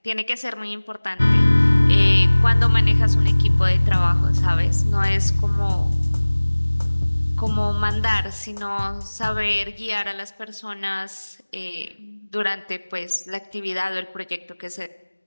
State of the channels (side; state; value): both; inverted; correlation -1.00